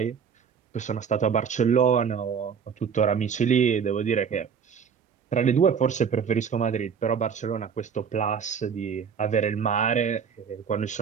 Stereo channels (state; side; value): quieter; left; 6.9 dB